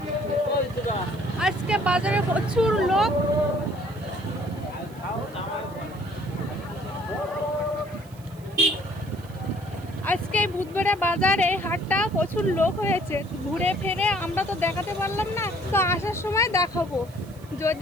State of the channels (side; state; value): right; noise; hiss, 25 dB below the sound